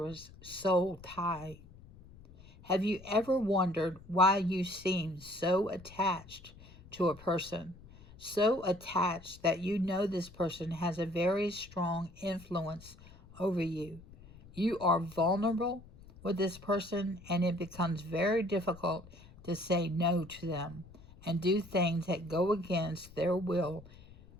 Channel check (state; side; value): noise; left; rumble, 21 dB below the sound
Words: soul tie. Have you ever wondered why you seem so attached to a person? So attached that you know this person has a very strong influence over you. You are vulnerable with this person, and it becomes very difficult to say no to them and do things that go against their will,